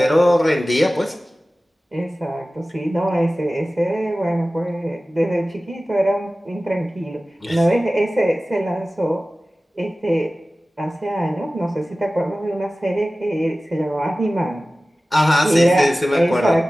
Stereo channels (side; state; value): both; normal; correlation 0.97